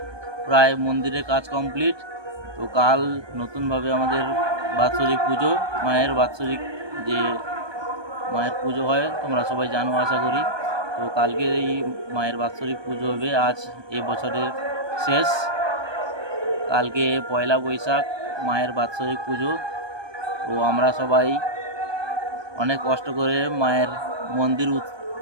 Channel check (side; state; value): left; late; 1.2 ms